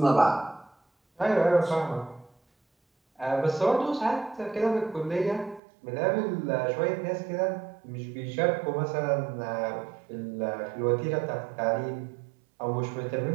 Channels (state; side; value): drops out; left; at 5.6 s